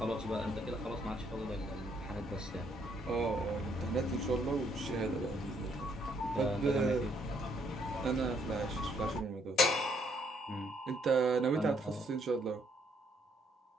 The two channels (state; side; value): normal; both; correlation 0.69